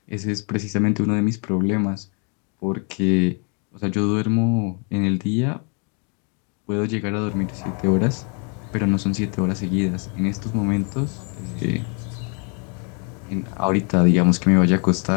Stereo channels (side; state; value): right; quieter; 37.0 dB